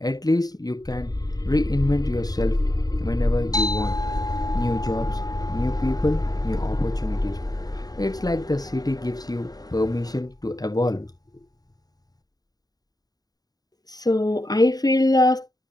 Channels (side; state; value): right; late; 0.18 ms